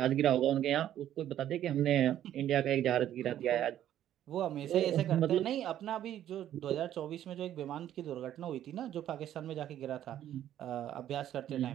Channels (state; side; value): quieter; left; 11.5 dB